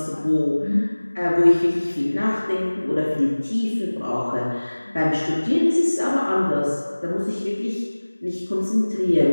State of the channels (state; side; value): inverted; both; correlation -1.00